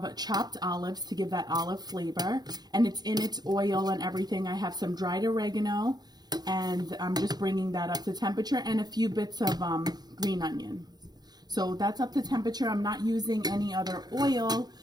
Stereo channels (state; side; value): late; left; 0.19 ms